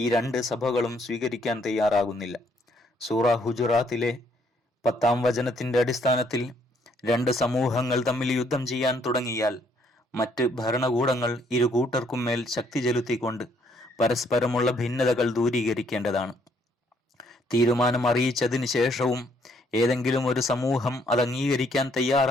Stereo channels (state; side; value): normal; both; correlation 0.68